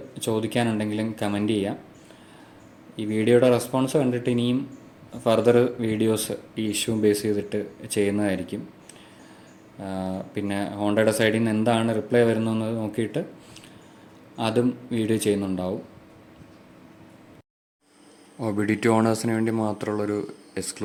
ചോദിക്കാനുണ്ടെങ്കിലും കമൻറ്റ് ചെയ്യാം. ഈ വീഡിയോയുടെ റെസ്പോൺസ് കണ്ടിട്ട് ഇനിയും ഫർദർ വീഡിയോസ് ഈ ഇഷ്യൂ ബേസ് ചെയ്തിട്ട് ചെയ്യുന്നതായിരിക്കും. പിന്നെ ഹോണ്ടയുടെ സൈഡിൽ നിന്ന് എന്താണ് റിപ്ലൈ വരുന്നതെന്ന് നോക്കിയിട്ട് അതും വീഡിയോ ചെയ്യുന്നുണ്ടാവും. OBD2 ഓണേഴ്സിന് വേണ്ടി മാത്രമുള്ളൊരു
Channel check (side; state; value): both; identical; correlation 1.00